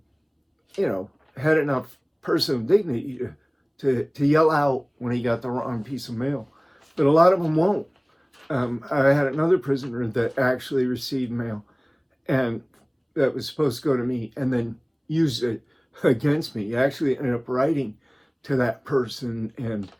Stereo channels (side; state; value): both; identical; correlation 1.00